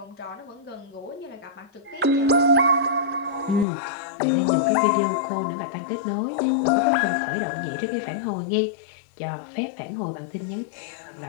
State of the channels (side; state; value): right; drops out; at 3.7 s